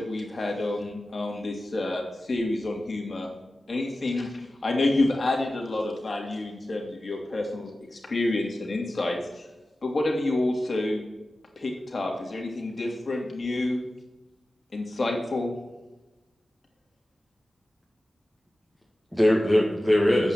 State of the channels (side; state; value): both; normal; correlation 0.95